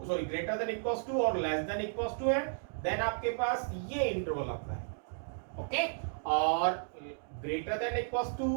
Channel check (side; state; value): left; silent; digital silence